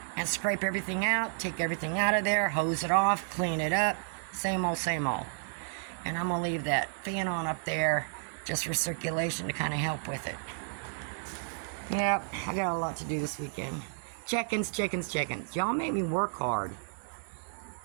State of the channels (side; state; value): left; silent; 57 dB below the other